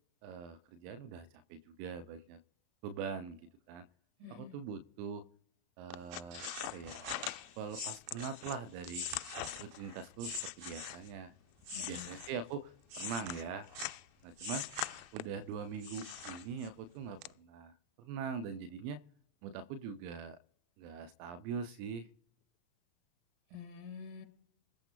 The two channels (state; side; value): late; left; 34 ms